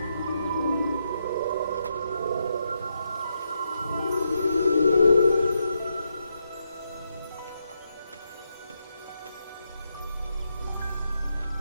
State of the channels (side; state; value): both; inverted; correlation -0.81